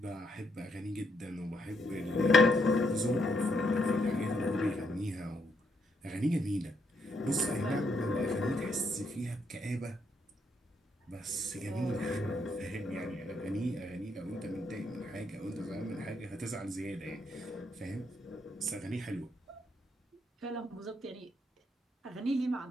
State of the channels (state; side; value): normal; both; correlation 0.75